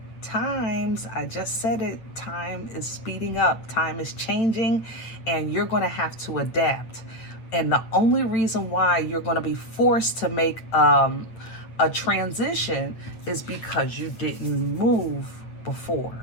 times. I just said it. Time is speeding up. Time is changing, and you're going to have to adapt. And the only reason why you're going to be forced to make a transition is because you didn't move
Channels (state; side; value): late; right; 8.9 ms